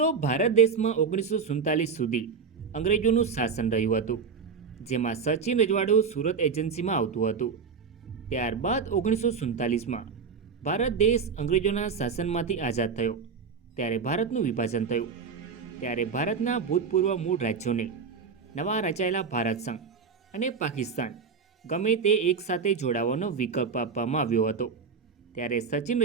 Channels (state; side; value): quieter; left; 5.7 dB